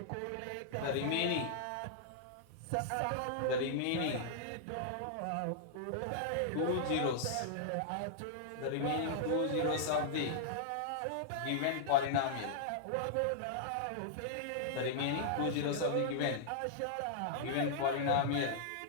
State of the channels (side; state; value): both; different; correlation -0.01